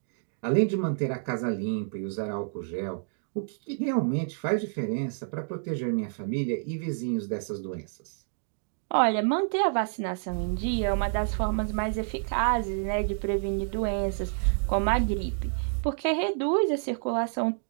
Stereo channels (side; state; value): left; silent; digital silence